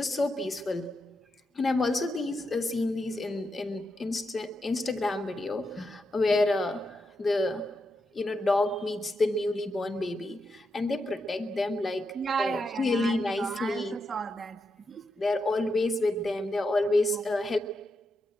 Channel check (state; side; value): normal; both; correlation 0.85